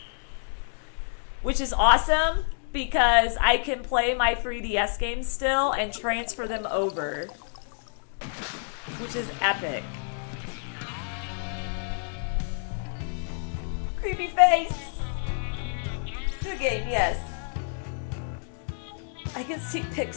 which is awesome because I can play my 3DS games still and transfer them over, which is epic. Creepy face. Good game, yes. I can see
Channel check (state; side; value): silent; right; digital silence